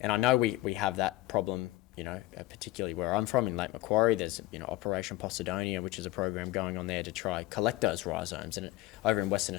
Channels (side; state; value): right; quieter; 17.6 dB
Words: I know we have that problem, particularly where I'm from in Lake Macquarie. There's Operation Posidonia, which is a program going on there to try collect those rhizomes. And over in Western